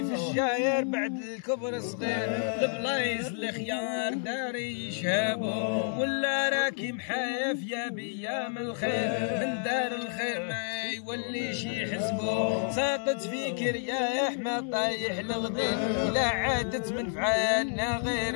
في الشاير بعد الكبر صغير، البلايص الخيار داري يشهبو. ولا راكي محايف يا بيام الخير، من دار الخير ما يوليش يحسبو. ساقط فيك رياح ما طايح الغدير، لا عادت من فعالنا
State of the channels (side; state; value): right; silent; digital silence